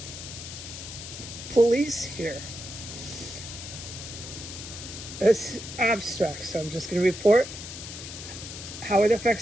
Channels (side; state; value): left; noise; hiss, 10 dB below the sound